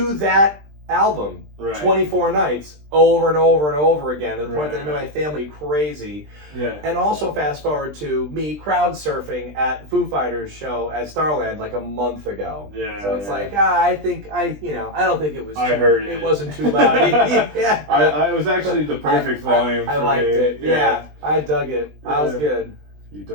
that album 24 nights over and over and over again to the point that it made my family crazy. Yeah. And also fast forward to me crowd surfing at Foo Fighters show at Starland like a month ago. Yeah. So it's like I don't think it was. I heard it. It wasn't too loud. Yeah. I was actually the perfect volume. I liked it. Yeah. I dug it. I was good. You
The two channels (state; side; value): late; left; 20 ms